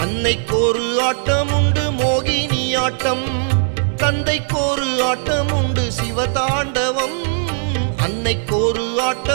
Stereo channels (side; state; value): left; silent; 67 dB below the other